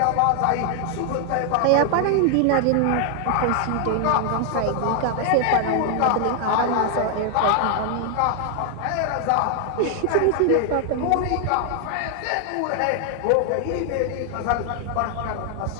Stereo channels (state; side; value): different; both; correlation 0.00